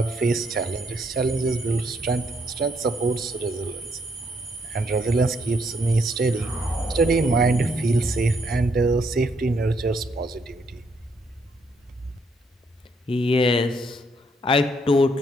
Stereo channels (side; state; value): both; normal; correlation 0.72